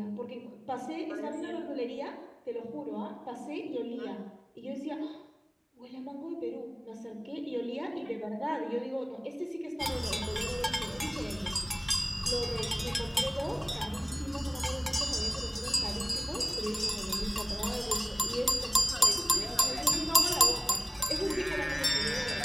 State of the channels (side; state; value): both; identical; correlation 1.00